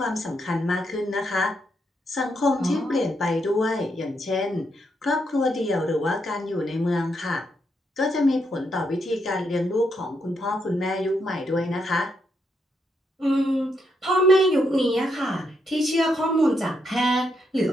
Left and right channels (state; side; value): normal; both; correlation 0.79